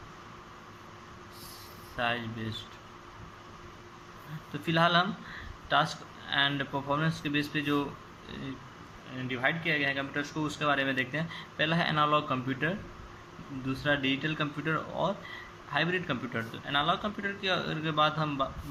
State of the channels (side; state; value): both; identical; correlation 1.00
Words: साइज बेस्ड। तो फिलहाल हम टास्क एंड परफॉर्मेंस के बेस पे जो डिवाइड किया गया है कंप्यूटर्स को उसके बारे में देखते हैं। पहला है एनालॉग कंप्यूटर, दूसरा डिजिटल कंप्यूटर और हाइब्रिड कंप्यूटर। तो एनालॉग कंप्यूटर के बाद